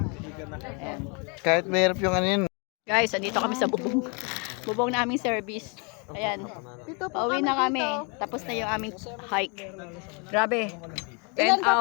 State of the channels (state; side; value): quieter; right; 33.9 dB